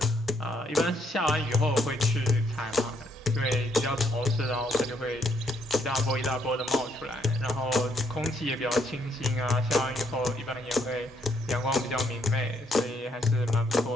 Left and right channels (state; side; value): normal; both; correlation 0.72